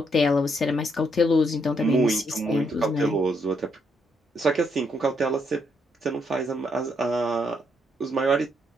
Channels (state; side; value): normal; both; correlation 0.75